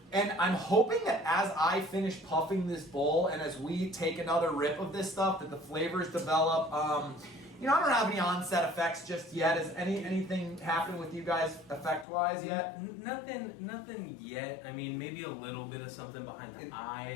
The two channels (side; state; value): right; drops out; at 12.1 s